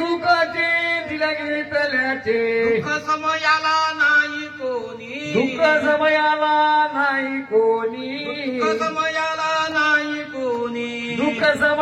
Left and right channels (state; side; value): identical; both; correlation 1.00